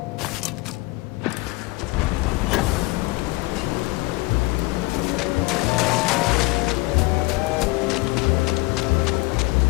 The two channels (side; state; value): right; quieter; 22.8 dB